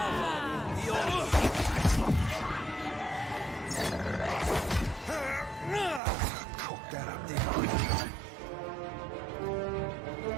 Cook that up, there.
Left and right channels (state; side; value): drops out; left; at 6.0 s